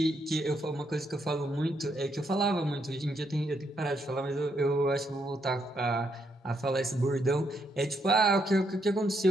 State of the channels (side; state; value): both; normal; correlation 0.76